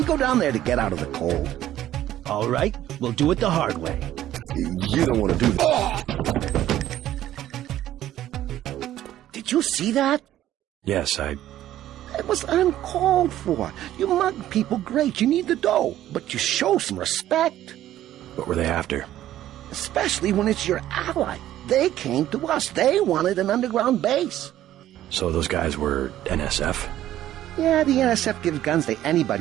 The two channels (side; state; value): left; quieter; 13.0 dB